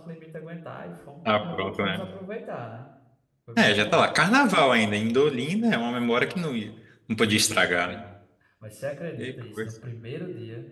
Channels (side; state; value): both; identical; correlation 1.00